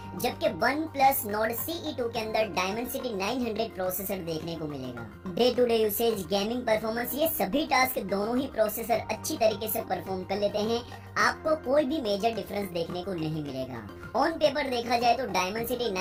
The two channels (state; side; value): identical; both; correlation 1.00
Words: जबकि OnePlus Nord CE2 के अंदर Dimensity 900 प्रोसेसर देखने को मिलेगा। Day to day usage, gaming performance, ये सभी टास्क दोनों ही प्रोसेसर अच्छी तरीके से परफॉर्म कर लेते हैं। आपको कोई भी मेजर डिफरेंस देखने को नहीं मिलेगा। ऑन पेपर देखा जाए तो Dimensity